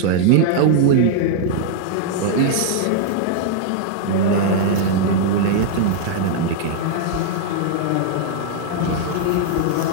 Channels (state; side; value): different; both; correlation -0.01